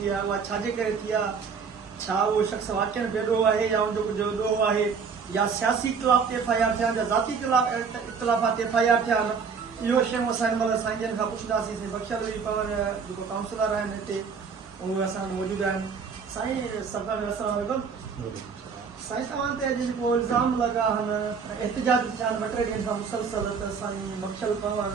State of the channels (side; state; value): left; quieter; 5.8 dB